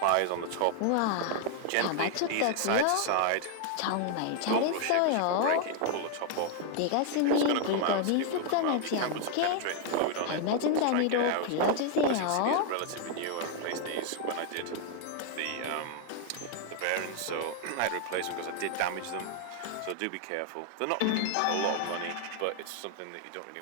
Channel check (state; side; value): different; both; correlation 0.00